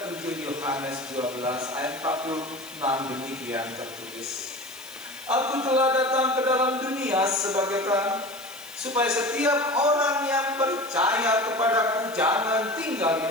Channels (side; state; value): left; noise; hiss, 18 dB below the sound